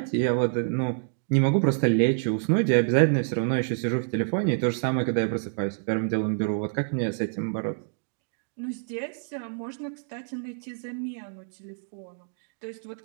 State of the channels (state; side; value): silent; left; digital silence